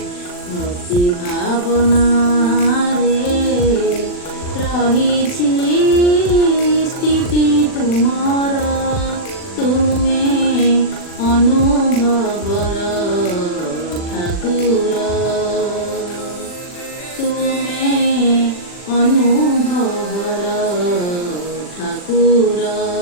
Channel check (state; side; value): late; right; 40 ms